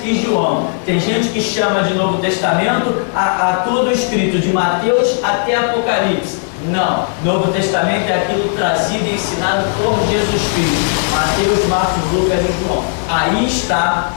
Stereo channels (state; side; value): silent; right; 68 dB below the other